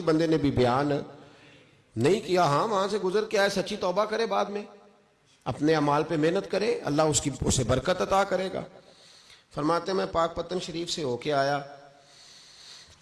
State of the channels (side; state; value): both; identical; correlation 1.00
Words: بندے نے بھی بیان نہیں کیا۔ ہاں وہاں سے گزر کے آئے، سچی توبہ کرے، بعد میں اپنے اعمال پہ محنت کرے، اللہ اسے برکت عطا کرے گا۔ فرماتے ہیں میں پاک پتن شریف سے ہو کے آیا،